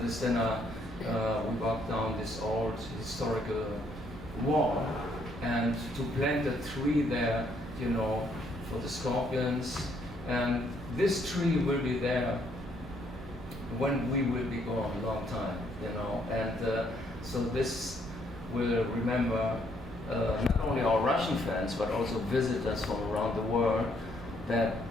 dinner, we walked down this old historical wall, and to plant a tree there, you know, for the Scorpions. And this tree will be there when we will be gone a long time, you know. And so this will remember not only our Russian fans, but also visitors from around the world, that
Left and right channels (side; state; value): both; normal; correlation 0.70